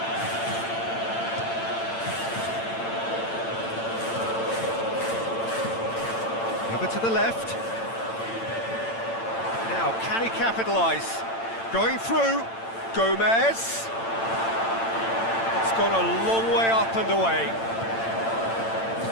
Over to the left. Now, can he capitalise? Going through. Gomez. It's gone a long way up and away.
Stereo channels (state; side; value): late; right; 8.9 ms